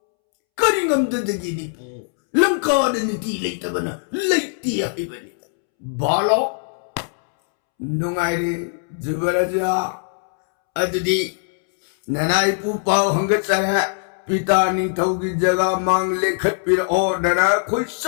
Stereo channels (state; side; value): silent; right; 65 dB below the other